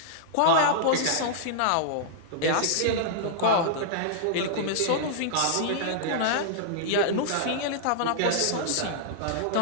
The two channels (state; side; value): different; both; correlation -0.02